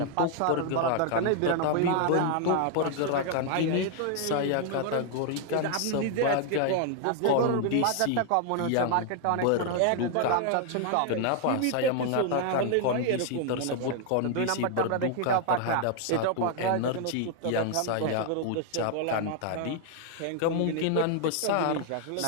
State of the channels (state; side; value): different; both; correlation 0.00